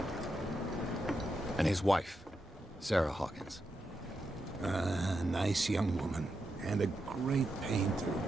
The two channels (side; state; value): both; normal; correlation 0.86